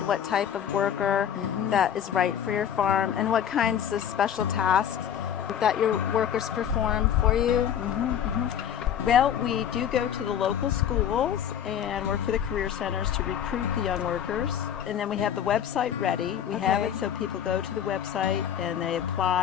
what type of worker that is right for your farm? And what kinds of special tasks that your workers perform for you? Well, we do go to the local schools and work for the career centers to recruit the young workers. And then we have the website ready. We have it so people go to the website and they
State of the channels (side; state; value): right; quieter; 9.3 dB